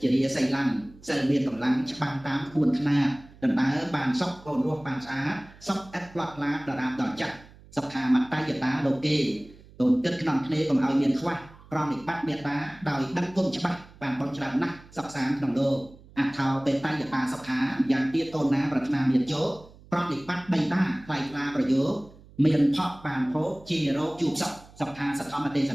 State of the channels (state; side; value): noise; right; hum, 23 dB below the sound